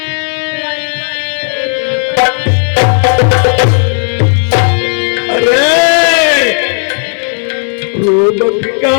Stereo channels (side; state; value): right; silent; 66 dB below the other